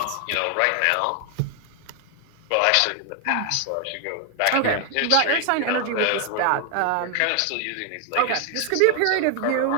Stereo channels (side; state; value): both; different; correlation 0.00